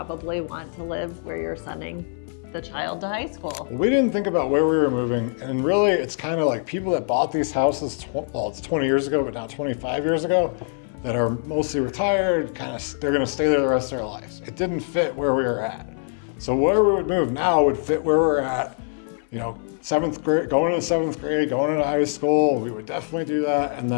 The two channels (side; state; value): right; silent; 63 dB below the other